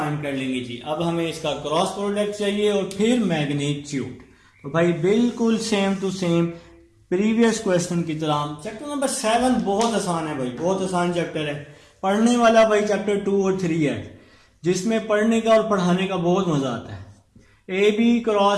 कर लेंगे जी। अब हमें इसका क्रॉस प्रोडक्ट चाहिए और फिर मैग्नीट्यूड। तो भाई बिल्कुल same to same previous question की तरह। चैप्टर नंबर 7 बहुत आसान है भाई, बहुत आसान चैप्टर है। पढ़ने वाला भाई चैप्टर 2 और 3 है, जिसमें पढ़ने का और पढ़ाने का बहुत मजा आता है। AB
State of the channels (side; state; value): both; identical; correlation 1.00